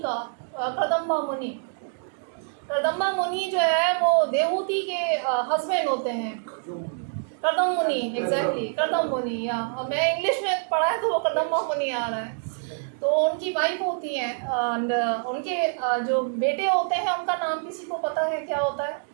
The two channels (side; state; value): left; silent; digital silence